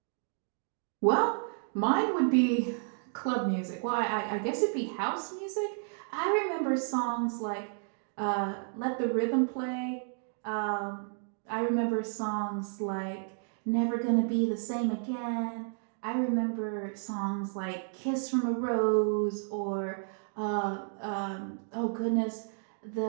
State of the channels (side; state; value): left; silent; 57 dB below the other